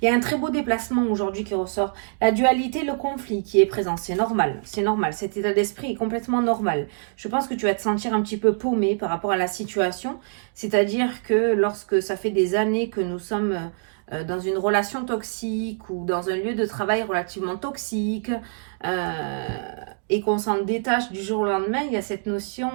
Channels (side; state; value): left; silent; digital silence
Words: Il y a un très beau déplacement aujourd'hui qui ressort. La dualité, le conflit qui est présent, c'est normal, c'est normal. Cet état d'esprit est complètement normal. Je pense que tu vas te sentir un petit peu paumé par rapport à la situation. C'est-à-dire que lorsque ça fait des années que nous sommes dans une relation toxique ou dans un lieu de travail relativement toxique et qu'on s'en détache du jour au lendemain, il y a cette